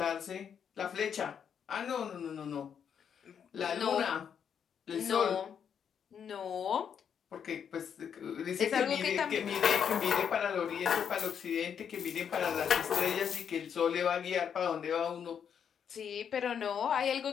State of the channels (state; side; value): quieter; right; 7.8 dB